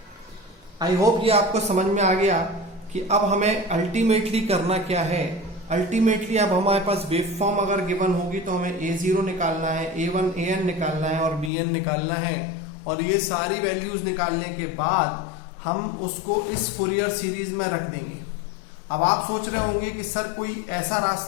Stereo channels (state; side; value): drops out; right; at 11.5 s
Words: I hope ये आपको समझ में आ गया कि अब हमें अल्टीमेटली करना क्या है। अल्टीमेटली अब हमारे पास वेव फॉर्म अगर गिवन होगी तो हमें a0 निकालना है, a1 an निकालना है और bn निकालना है, और ये सारी वैल्यूज निकालने के बाद हम उसको इस फूरियर सीरीज में रख देंगे। अब आप सोच रहे होंगे कि सर कोई ऐसा